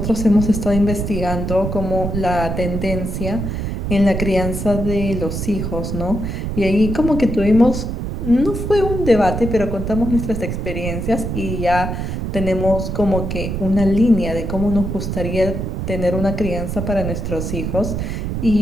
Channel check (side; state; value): right; noise; rumble, 3 dB below the sound